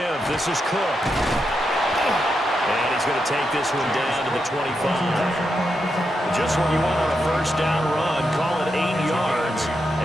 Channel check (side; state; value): both; normal; correlation 0.85